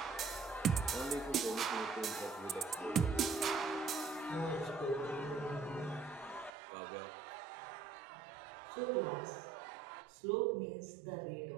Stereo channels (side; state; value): left; drops out; at 6.5 s